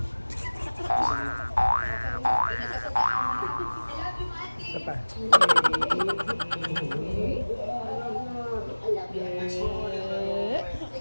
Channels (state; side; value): inverted; both; correlation -1.00